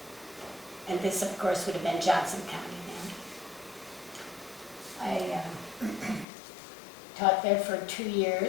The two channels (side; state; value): right; drops out; at 6.2 s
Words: And this, of course, would have been Johnson County then. I taught there for 2